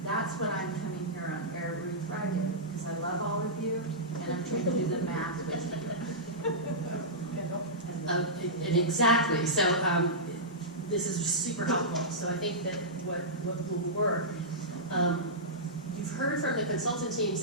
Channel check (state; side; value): normal; both; correlation -0.15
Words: That's what I'm coming here on every Friday, because I love all of you, and I'm trying to do the math with you. Exactly. So this is super helpful. So I think that what will work, you've heard from the consultant teams